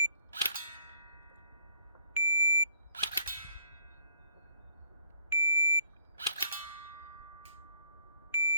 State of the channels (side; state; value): both; inverted; correlation -0.62